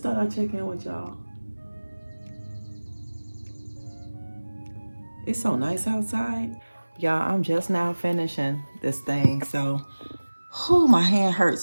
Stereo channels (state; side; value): inverted; both; correlation -1.00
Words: thought I'd check in with y'all. It's so nice outside. Y'all, I'm just now finishing this thing. So, my hand